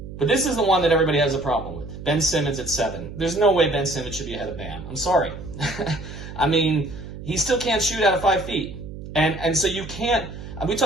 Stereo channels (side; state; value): right; noise; hum, 11 dB below the sound